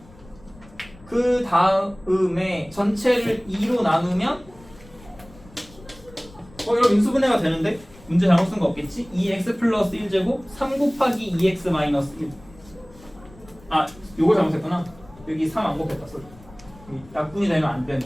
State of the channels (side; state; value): left; noise; rumble, 23 dB below the sound